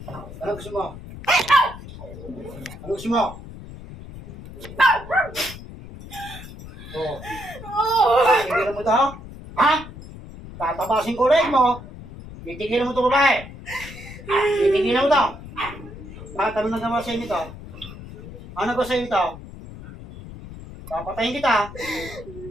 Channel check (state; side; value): noise; left; rumble, 14 dB below the sound